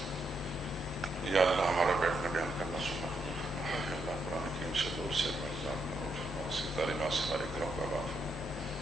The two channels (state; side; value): normal; both; correlation 0.79